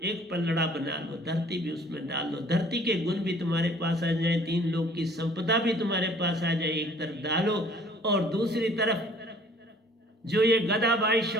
एक पलड़ा बना लो, धरती भी उसमें डाल लो। धरती के गुण भी तुम्हारे पास आ जाए, 3 लोक की संपदा भी तुम्हारे पास आ जाए। एक तरफ डालो और दूसरी तरफ जो ये गदाबाई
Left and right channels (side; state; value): both; normal; correlation 0.55